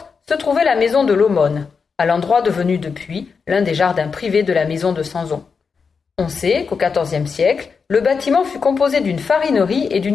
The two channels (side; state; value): right; quieter; 5.4 dB